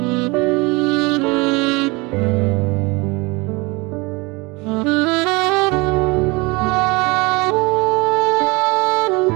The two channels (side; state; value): left; quieter; 25.6 dB